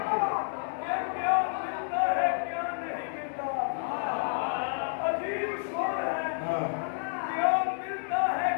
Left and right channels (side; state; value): right; silent; digital silence